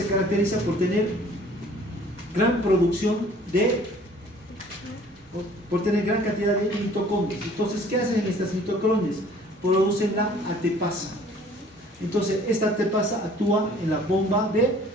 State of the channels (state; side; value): normal; both; correlation 0.54